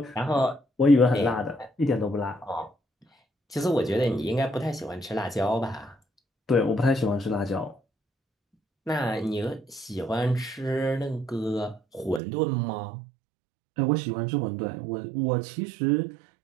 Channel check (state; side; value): drops out; left; at 12.2 s